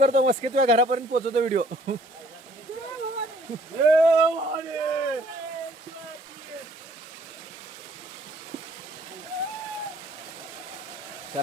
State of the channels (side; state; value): both; normal; correlation 0.60